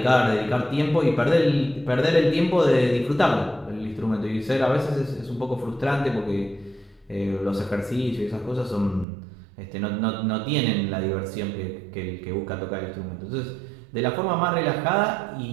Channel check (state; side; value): drops out; left; at 9.1 s